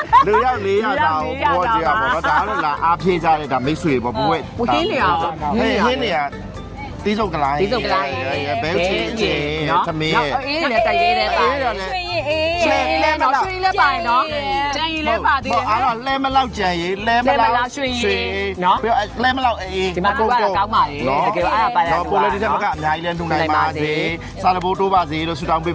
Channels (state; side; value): identical; both; correlation 1.00